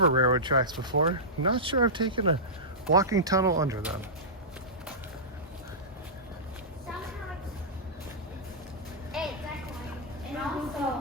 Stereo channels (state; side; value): normal; both; correlation -0.15